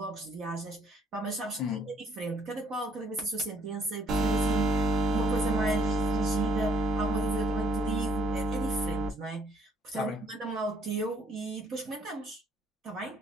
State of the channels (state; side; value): normal; both; correlation 0.65